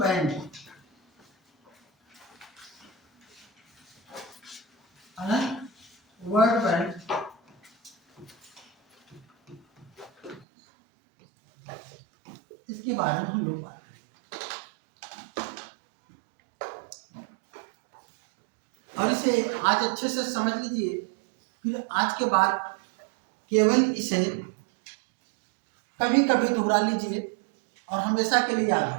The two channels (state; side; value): drops out; left; at 10.5 s